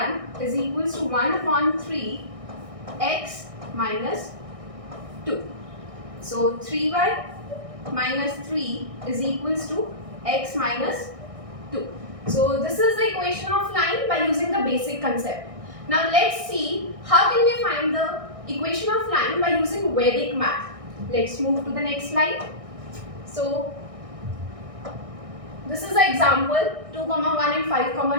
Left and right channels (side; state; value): left; late; 1.6 ms